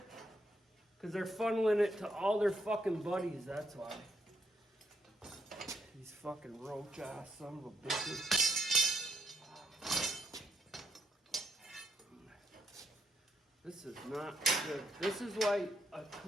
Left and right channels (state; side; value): normal; both; correlation 0.76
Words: Because they're funneling it to all their fucking buddies, that's why. These fucking roach ass son of a bitches. This is not good. This is why a